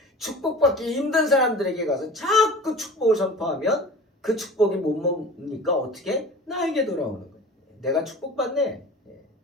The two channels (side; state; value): both; normal; correlation 0.39